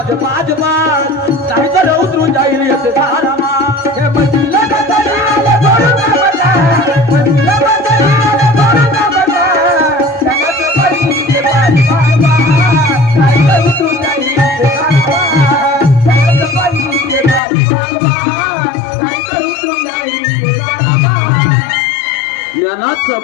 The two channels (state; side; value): drops out; right; at 17.4 s